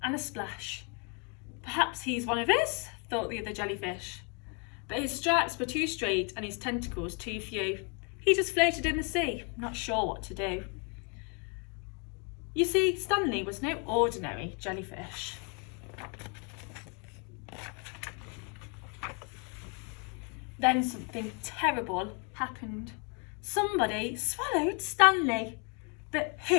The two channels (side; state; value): right; quieter; 36.0 dB